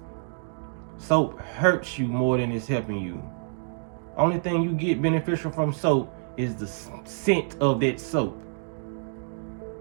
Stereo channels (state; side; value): silent; left; digital silence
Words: Soap hurts you more than it's helping you. Only thing you get beneficial from soap is the scent of that soap.